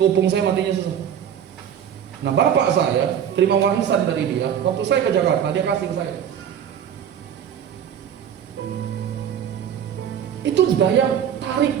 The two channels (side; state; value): left; quieter; 9.0 dB